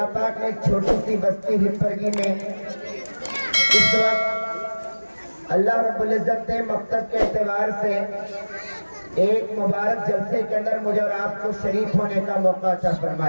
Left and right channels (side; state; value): both; inverted; correlation -1.00